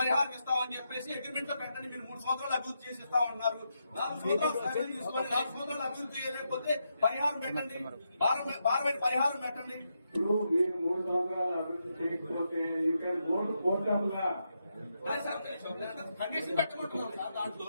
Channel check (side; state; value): both; inverted; correlation -0.83